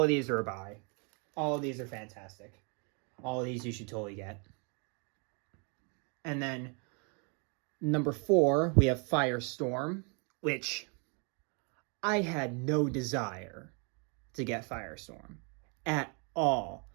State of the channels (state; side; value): quieter; left; 35.5 dB